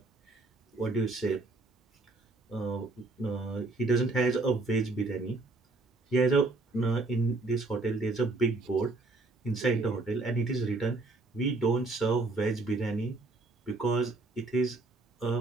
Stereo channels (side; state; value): left; quieter; 3.2 dB